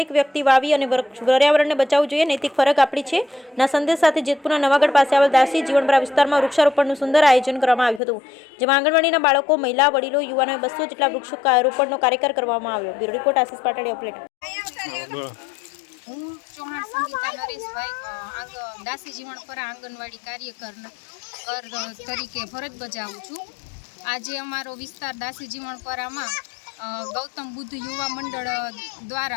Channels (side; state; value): right; drops out; at 8.0 s